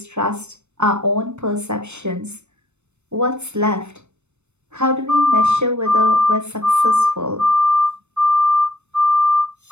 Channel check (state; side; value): late; left; 0.82 ms